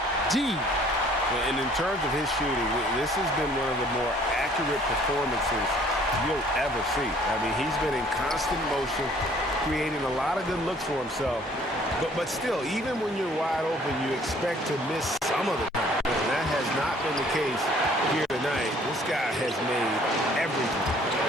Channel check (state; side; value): normal; both; correlation 0.57